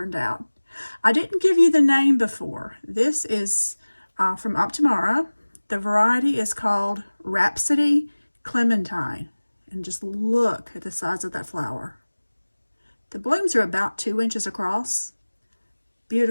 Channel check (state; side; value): inverted; both; correlation -1.00